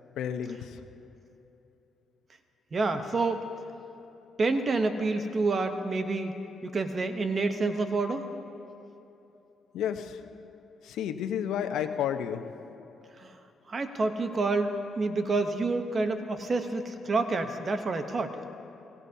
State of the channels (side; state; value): both; normal; correlation 0.80